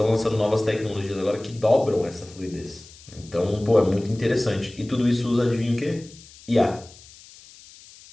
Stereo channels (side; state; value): left; noise; hiss, 22 dB below the sound